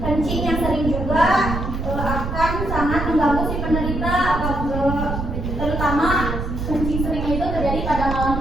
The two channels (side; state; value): right; noise; rumble, 4 dB below the sound